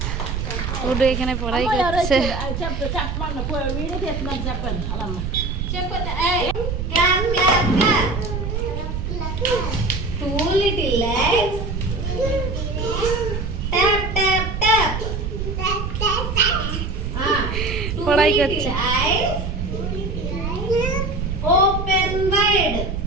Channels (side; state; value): right; noise; rumble, 3 dB below the sound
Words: ওটা এখানে পড়াই করছে। পড়াই করছে। Open wide.